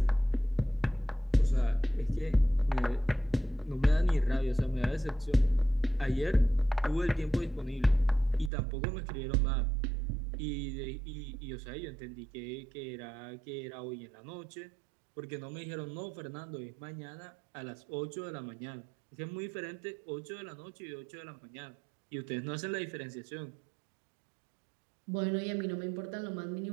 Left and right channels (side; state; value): left; drops out; at 8.5 s